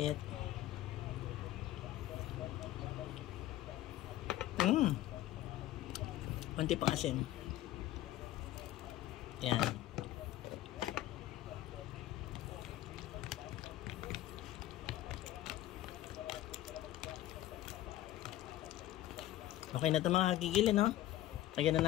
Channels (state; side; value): quieter; right; 14.3 dB